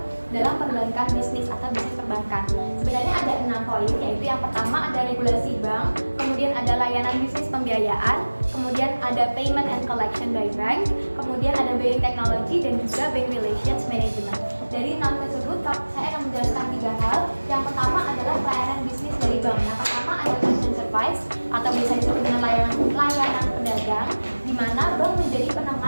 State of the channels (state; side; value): inverted; both; correlation -1.00